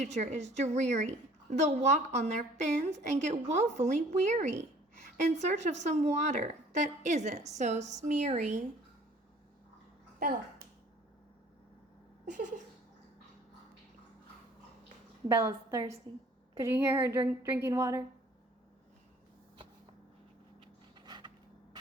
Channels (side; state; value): both; normal; correlation 0.54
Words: is dreary. They'll walk on their fins and get woefully weary in search of some water that isn't so smeary. Bella. Bella's thirsty. Could you hear her drinking water?